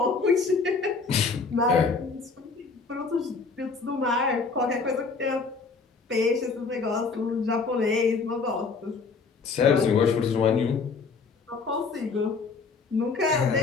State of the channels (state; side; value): quieter; right; 4.6 dB